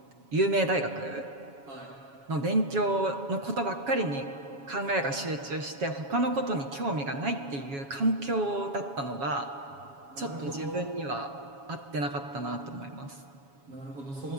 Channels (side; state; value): left; late; 7.2 ms